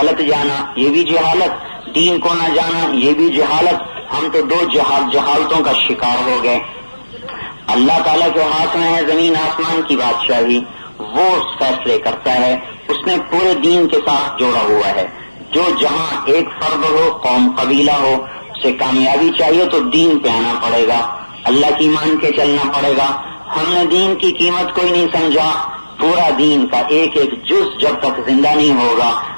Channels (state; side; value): inverted; both; correlation -1.00